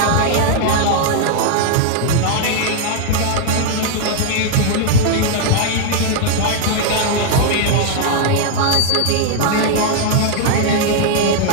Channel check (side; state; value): both; different; correlation 0.00